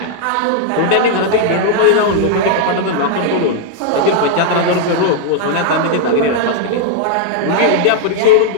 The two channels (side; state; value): both; different; correlation 0.00